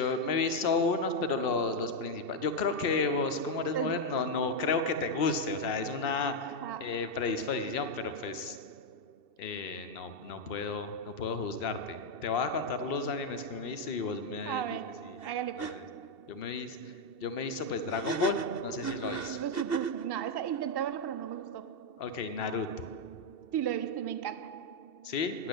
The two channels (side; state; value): right; late; 2.7 ms